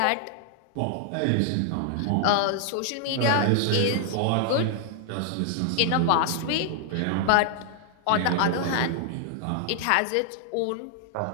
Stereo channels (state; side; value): different; both; correlation 0.00